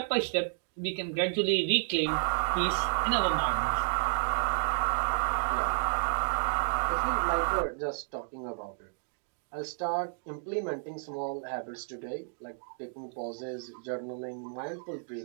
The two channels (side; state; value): left; silent; digital silence